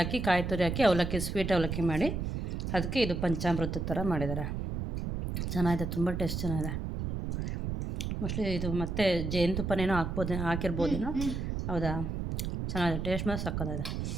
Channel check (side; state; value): right; noise; rumble, 3 dB below the sound